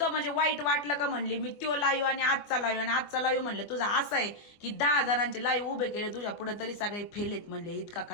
म्हणजे वाईट वाटलं का म्हणली मी तो लाईव्ह आणि आजचा लाईव्ह म्हणलं तुझा असं आहे की 10 जणांचे लाईव्ह उभे केले तुझ्या पुढे तरी सगळे फेलेत म्हणले. इतका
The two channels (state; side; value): late; right; 24 ms